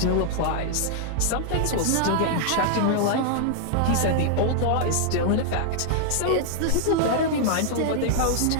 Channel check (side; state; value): both; different; correlation -0.01